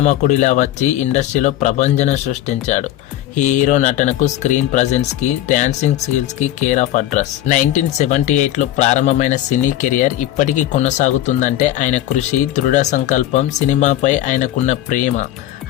వచ్చి ఇండస్ట్రీలో ప్రభంజనం సృష్టించాడు. ఈ హీరో నటనకు, స్క్రీన్ ప్రజెన్స్కి, డాన్సింగ్ స్కిల్స్కి కేర్ ఆఫ్ అడ్రస్. 1978లో ప్రారంభమైన సినీ కెరియర్ ఇప్పటికీ కొనసాగుతుందంటే ఆయన కృషి, దృఢ సంకల్పం, సినిమాపై ఆయనకున్న ప్రేమ,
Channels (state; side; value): quieter; right; 13.3 dB